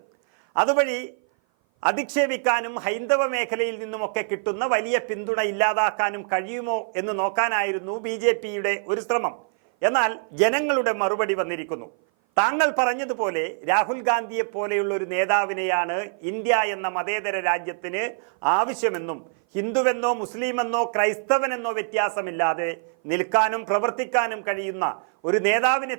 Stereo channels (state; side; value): silent; left; 57 dB below the other